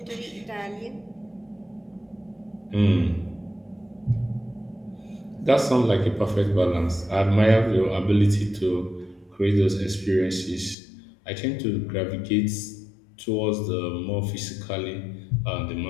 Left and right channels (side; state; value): right; drops out; at 10.8 s